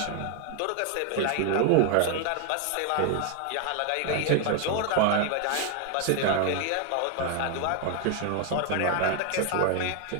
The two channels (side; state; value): both; different; correlation 0.00